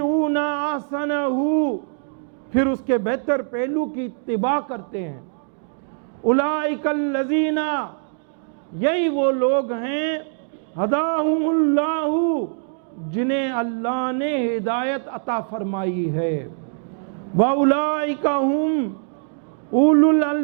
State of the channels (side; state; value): left; silent; digital silence